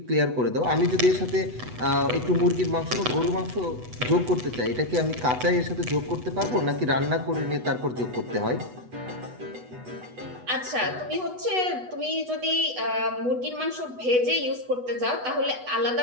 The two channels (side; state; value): left; late; 8.1 ms